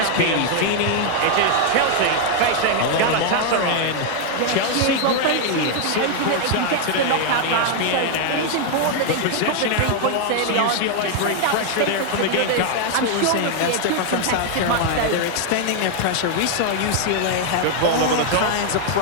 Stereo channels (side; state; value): both; different; correlation 0.00